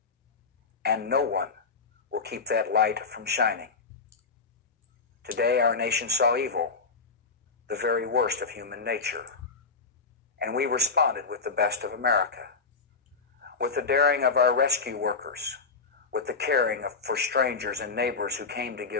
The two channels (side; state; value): right; quieter; 4.6 dB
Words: and no one will keep that light from shining. Today, our nation saw evil, the very worst of human nature, and we responded with the best of America, with the daring of our rescue workers, with the caring for strangers and neighbors who came to